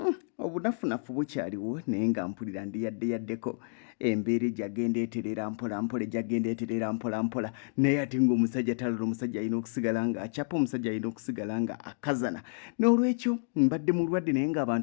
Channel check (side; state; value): right; silent; digital silence